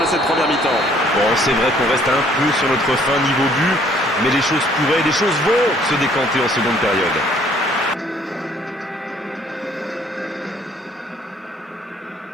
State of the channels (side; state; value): both; normal; correlation 0.61